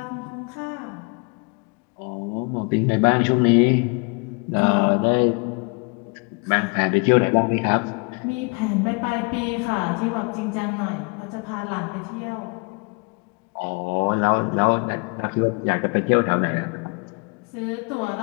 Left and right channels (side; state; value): right; quieter; 32.0 dB